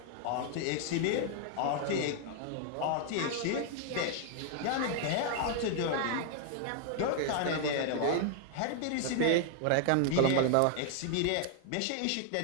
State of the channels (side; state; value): both; different; correlation 0.00